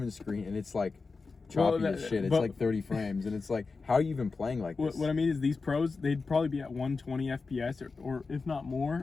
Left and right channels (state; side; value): quieter; right; 4.3 dB